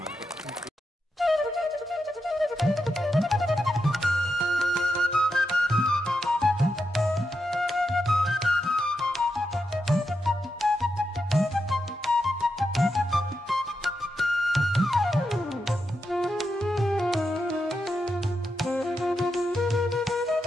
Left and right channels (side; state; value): both; normal; correlation 0.86